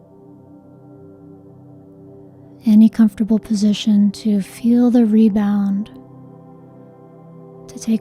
Any comfortable position to feel the rebound. To take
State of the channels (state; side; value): identical; both; correlation 1.00